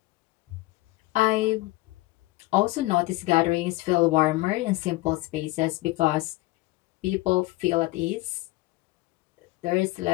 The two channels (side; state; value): right; quieter; 20.3 dB